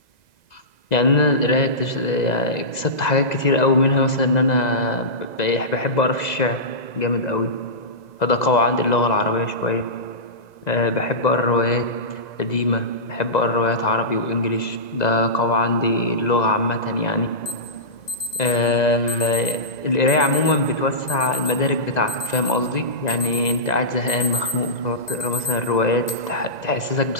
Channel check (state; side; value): late; right; 2.0 ms